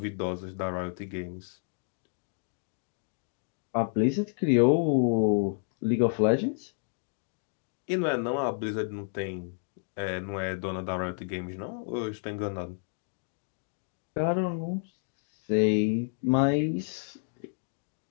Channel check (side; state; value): right; silent; digital silence